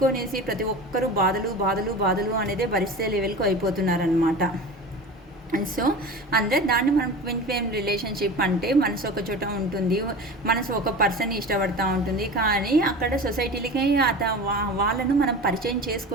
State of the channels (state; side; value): normal; both; correlation 0.33